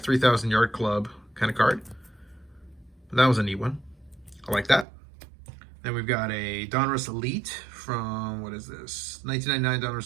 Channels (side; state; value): left; drops out; at 4.9 s